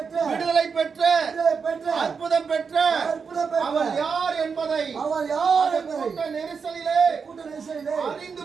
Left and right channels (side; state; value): left; quieter; 5.7 dB